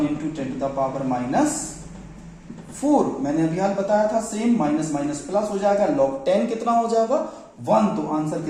into 10 to the power minus 4. मैंने अभी हाल बताया था सेम. माइनस माइनस प्लस हो जाएगा. लॉग 10 कितना हो जाएगा? 1. तो आंसर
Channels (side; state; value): both; identical; correlation 1.00